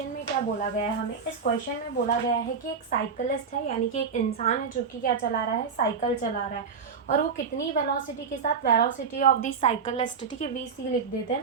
में क्या बोला गया है हमें। इस क्वेश्चन में बोला गया है कि एक साइकिलिस्ट है, यानी कि एक इंसान है जो कि क्या चला रहा है, साइकिल चला रहा है। और वो कितनी वेलोसिटी के साथ, वेलोसिटी ऑफ दी साइकिलिस्ट, ठीक है, VC लिख देते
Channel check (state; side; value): quieter; left; 5.8 dB